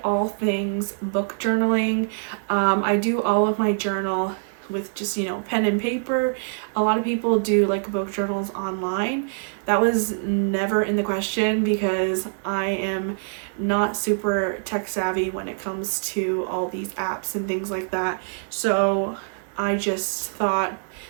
all things book journaling. I do all of my journal with just, pen and paper. A lot of people do like book journals online. That was never in the question because I am not super tech savvy when it comes to all these apps and things like that. So I just thought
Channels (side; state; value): left; silent; digital silence